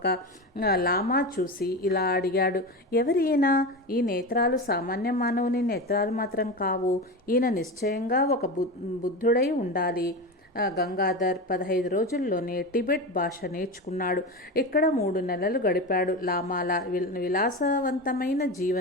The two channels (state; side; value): normal; both; correlation 0.23